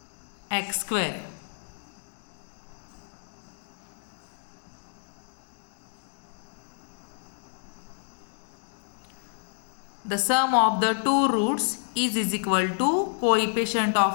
x square. The sum of the two roots is equal to coefficient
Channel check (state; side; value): silent; right; digital silence